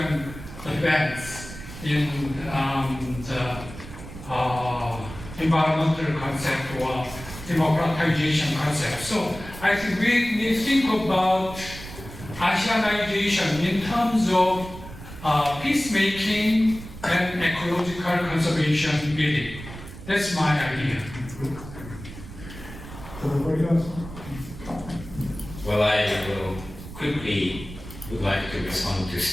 advance in the environmental concept or democratization concept. So I think we need to think about ASEANization in terms of peacemaking and ecological conservation building. That's my idea. Well, I will quickly would like to respond to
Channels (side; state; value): right; noise; rumble, 13 dB below the sound